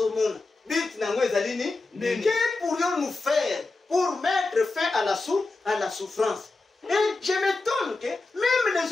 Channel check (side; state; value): right; quieter; 3.4 dB